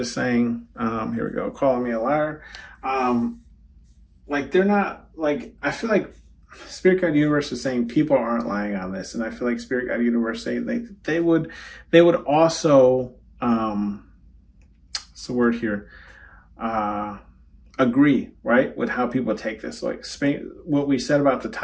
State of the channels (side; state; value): both; identical; correlation 1.00